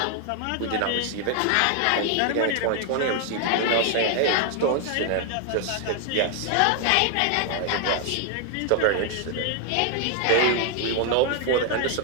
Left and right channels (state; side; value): different; both; correlation 0.00